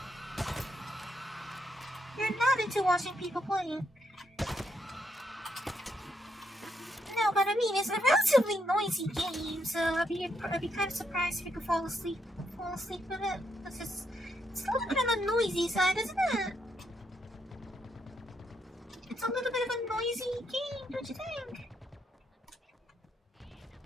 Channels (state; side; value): normal; both; correlation 0.77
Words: You're not into watching people playing. No, but I mean, it's a relatively noisy game, so I'd be kind of surprised if you could fall asleep with it. It's a little bit on the noisy side, isn't it? It's a little bit of a noisy game, don't you think?